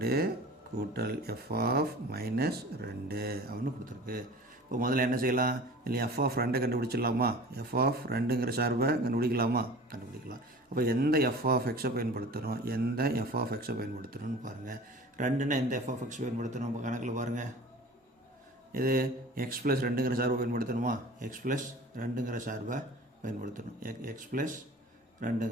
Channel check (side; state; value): both; normal; correlation 0.41